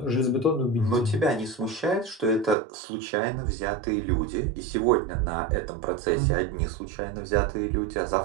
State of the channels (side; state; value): left; drops out; at 2.6 s